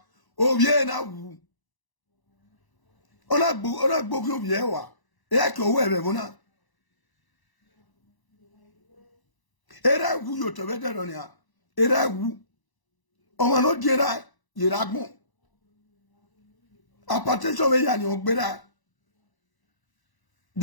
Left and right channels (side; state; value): right; late; 1.0 ms